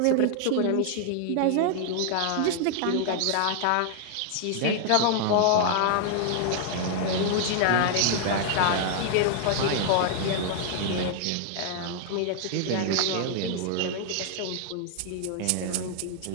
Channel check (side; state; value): both; different; correlation 0.00